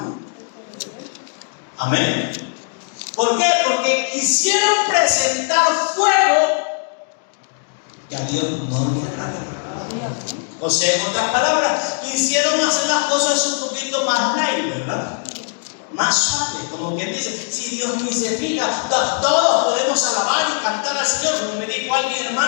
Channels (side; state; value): right; silent; 66 dB below the other